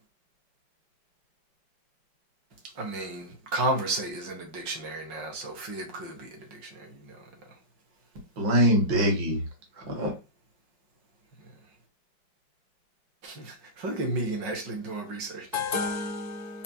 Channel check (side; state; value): left; late; 5.5 ms